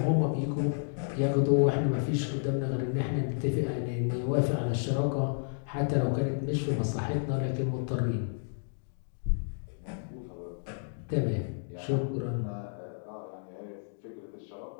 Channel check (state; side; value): silent; right; digital silence